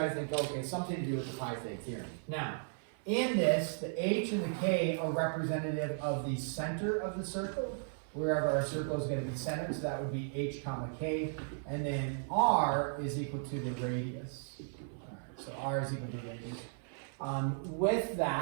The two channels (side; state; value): left; silent; 54 dB below the other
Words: to think, okay, something to do with the Pythag theorem. Now, in this, the h and the k are representative of the center of the circle, wherever our circle is going to be centered, so that would be h comma k, and then r is equal to the radius. All right, so r is equal to the radius. With